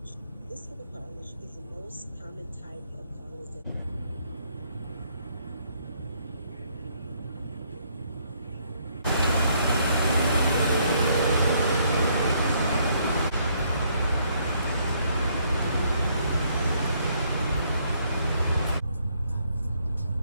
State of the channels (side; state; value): both; inverted; correlation -0.70